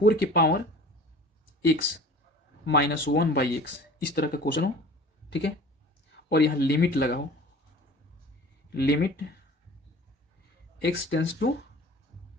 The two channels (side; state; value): both; normal; correlation 0.43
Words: के power x minus one by x, इस तरह का क्वेश्चन हो, ठीक है, और यहाँ लिमिट लगा हो, limit x tends to